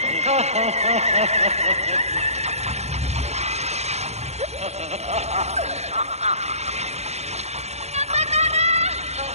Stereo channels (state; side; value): late; left; 0.31 ms